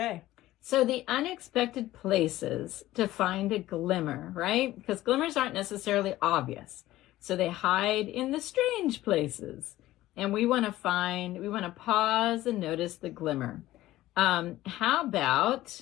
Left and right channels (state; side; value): quieter; right; 15.8 dB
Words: So the unexpected places to find a glimmer, right? Because glimmers aren't necessarily obvious. So they hide in the strange places. And we want to pause and notice the glimmer. How